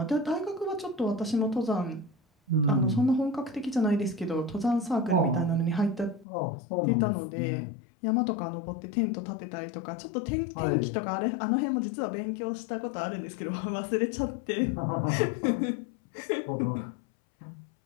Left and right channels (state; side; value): drops out; right; at 6.2 s